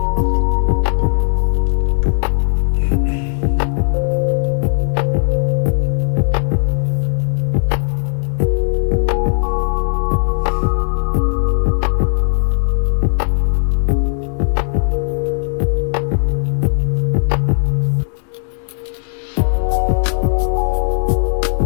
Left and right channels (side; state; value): right; silent; digital silence